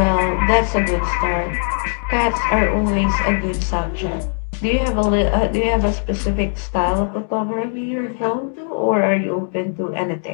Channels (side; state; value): right; silent; 59 dB below the other